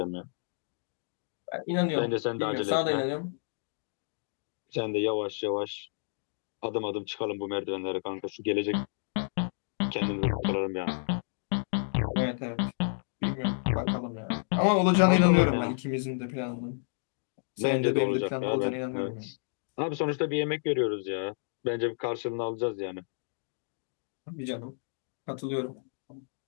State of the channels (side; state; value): right; silent; digital silence